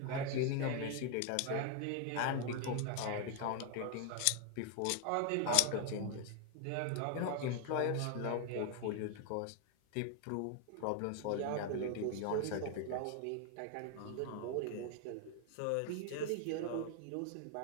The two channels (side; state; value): both; different; correlation 0.00